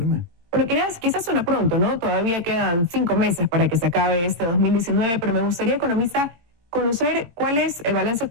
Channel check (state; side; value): late; left; 18 ms